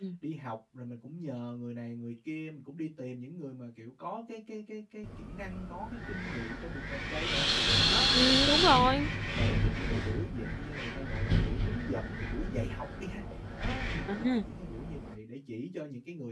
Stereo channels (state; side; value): identical; both; correlation 1.00